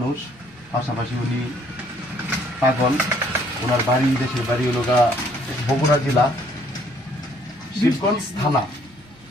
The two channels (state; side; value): normal; both; correlation 0.63